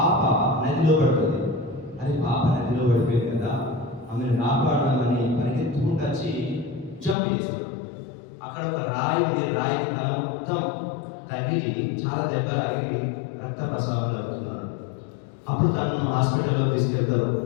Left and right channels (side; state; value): right; drops out; at 7.2 s